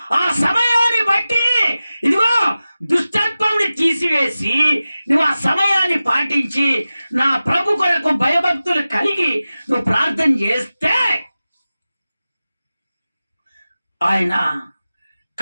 ఆ సమయాన్ని బట్టి ఇదిగో దుష్టత్వంని తీసివేసి నువ్వు ఆ సమయాన్ని పాటించి నా ప్రభు కొరకు భయభక్తులు కలిగి నువ్వు ప్రార్థన చేస్తే ఆయన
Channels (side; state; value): both; inverted; correlation -0.95